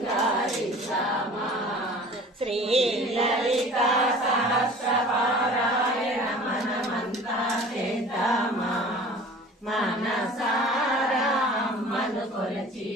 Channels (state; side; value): normal; both; correlation 0.44